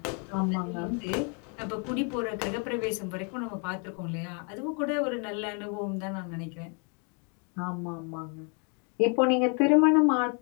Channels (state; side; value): quieter; right; 37.7 dB